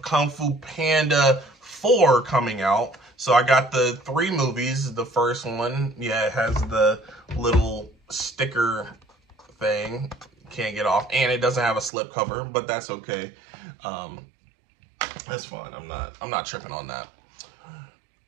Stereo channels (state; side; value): drops out; left; at 11.9 s